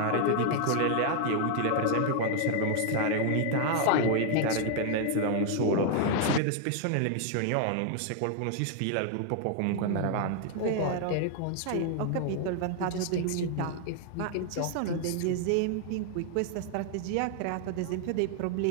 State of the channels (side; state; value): both; different; correlation 0.00